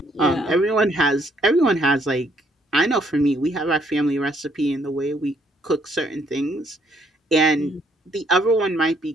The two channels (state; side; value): normal; both; correlation 0.68